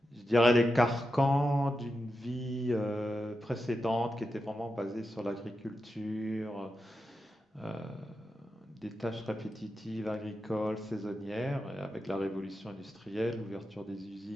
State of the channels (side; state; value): both; normal; correlation 0.89